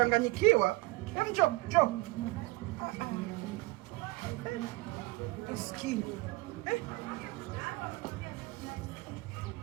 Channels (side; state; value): left; quieter; 22.7 dB